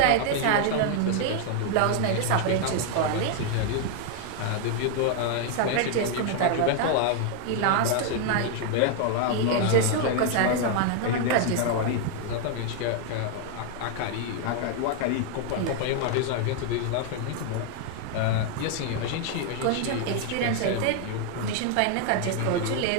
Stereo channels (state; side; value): different; both; correlation 0.00